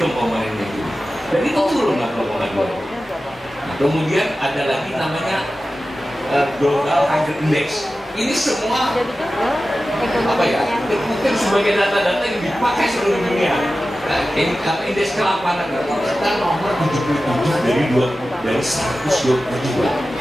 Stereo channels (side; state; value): both; normal; correlation 0.94